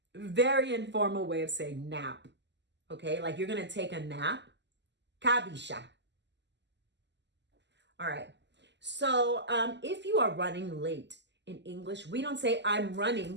very informal way of saying nap. Okay, like you're going to take a nap. Kabisha. All right, so if you are running late in English, we don't say I'm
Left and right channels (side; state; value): left; late; 0.51 ms